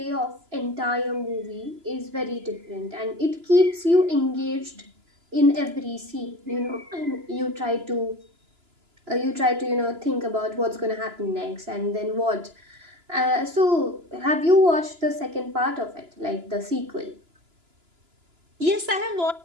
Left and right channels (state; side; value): late; left; 2.9 ms